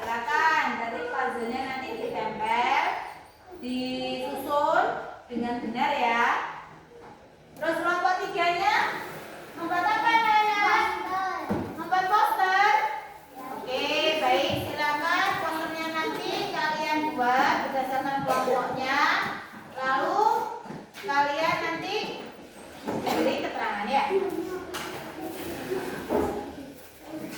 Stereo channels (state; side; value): identical; both; correlation 1.00